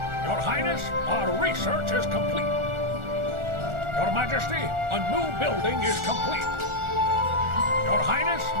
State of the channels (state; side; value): late; left; 1.4 ms